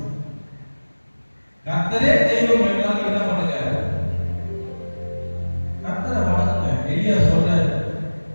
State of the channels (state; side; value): inverted; both; correlation -1.00